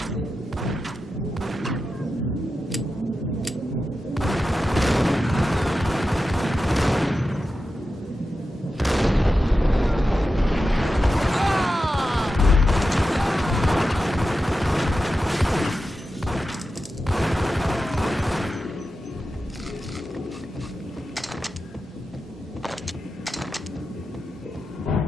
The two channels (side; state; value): both; normal; correlation 0.91